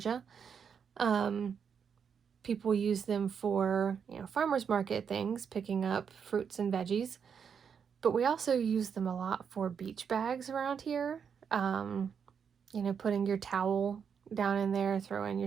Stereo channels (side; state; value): left; quieter; 7.0 dB